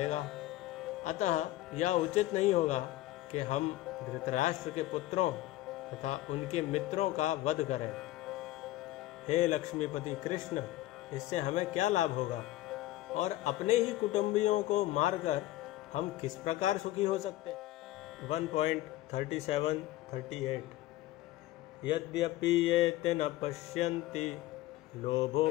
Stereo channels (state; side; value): quieter; right; 16.0 dB